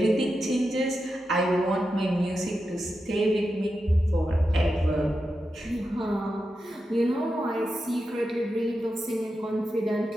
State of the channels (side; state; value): both; normal; correlation 0.89